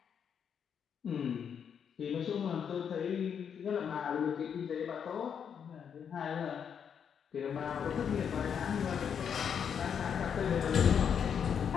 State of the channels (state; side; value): quieter; right; 7.6 dB